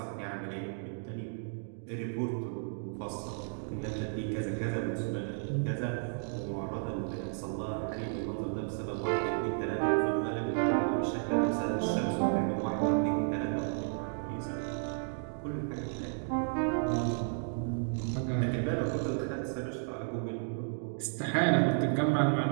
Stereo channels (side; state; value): left; silent; digital silence